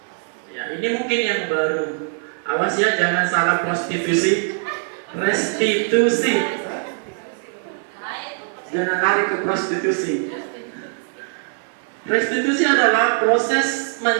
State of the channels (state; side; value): silent; left; 61 dB below the other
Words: Ya, ini mungkin yang baru. Awas ya, jangan salah prostitusi. Restitusi. Jangan lari ke prostitusi. Restitusi adalah proses